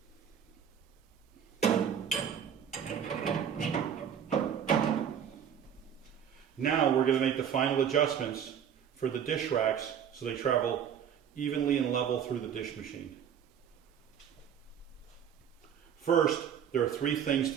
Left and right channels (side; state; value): left; quieter; 8.5 dB